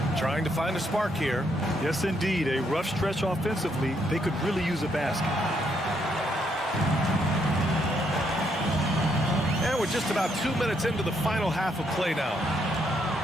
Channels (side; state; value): both; normal; correlation 0.74